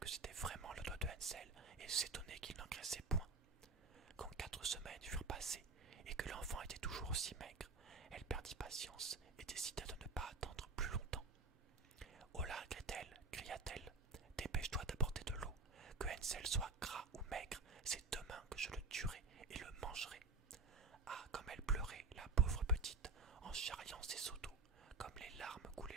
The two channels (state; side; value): quieter; left; 3.7 dB